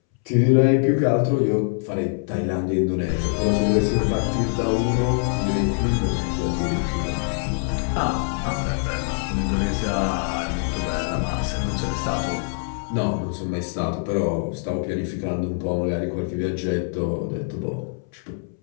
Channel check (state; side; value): silent; right; 63 dB below the other